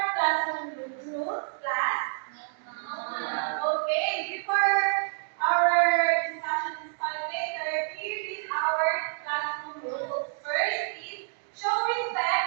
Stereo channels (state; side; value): silent; left; digital silence